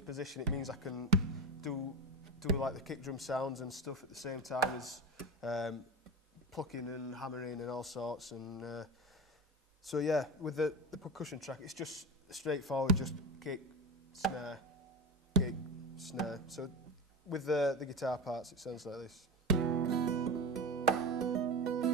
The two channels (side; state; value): both; normal; correlation 0.24